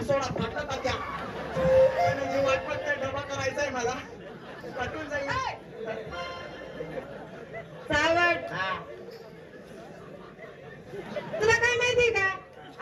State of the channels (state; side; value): identical; both; correlation 1.00